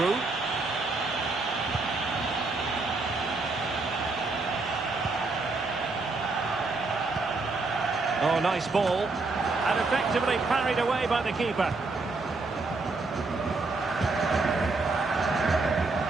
Oh, nice ball. And effectively parried away by the keeper. A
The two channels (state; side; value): quieter; left; 3.6 dB